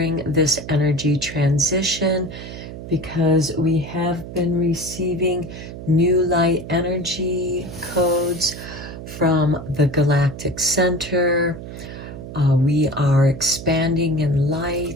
this energy transition, because we have been receiving new light energy codes from the Galactic Center. We are expanding in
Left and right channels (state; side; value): noise; right; hum, 11 dB below the sound